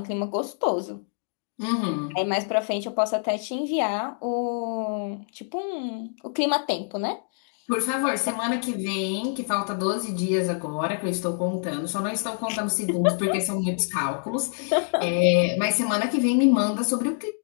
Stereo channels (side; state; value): right; silent; digital silence